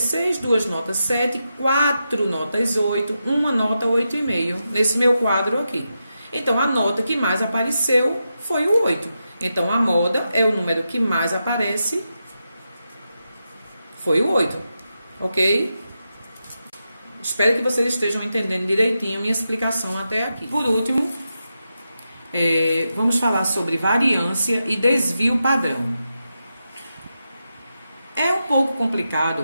6, 2 notas 7, 4 notas 8, uma nota 8,5 nesse meu quadro aqui. Então, a nota que mais apareceu foi o 8. Então, a moda é o número que mais aparece, foi o 8. Ok? Espero que vocês estejam entendendo direitinho a minha explicação até aqui. Por último, vamos falar sobre variância e desvio padrão. É um pouco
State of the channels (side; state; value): both; inverted; correlation -0.88